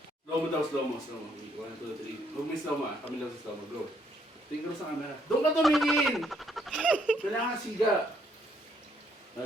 Slow mo daw, slow mo. 1, 2, 3. Huwag may slow mo ah. Kami lang sa slow mo. Go. Tingin sa camera. Doon ka tumingin! Kailangan siga.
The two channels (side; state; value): both; normal; correlation 0.70